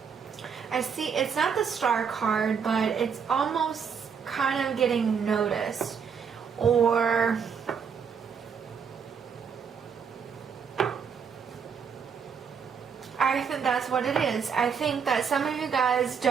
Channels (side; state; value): left; quieter; 6.6 dB